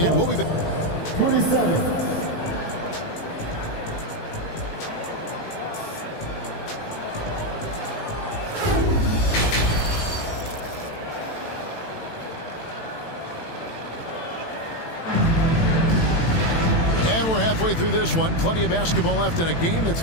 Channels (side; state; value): right; late; 18 ms